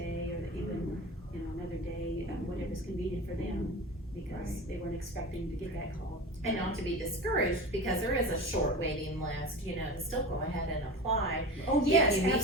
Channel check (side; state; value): both; normal; correlation 0.31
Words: or even, you know, another day, whatever's convenient for them, because Right. they weren't expecting to get that call. And not to be discouraged, because there is a short waiting list, you know, to still go ahead and apply Oh, If yes, you meet the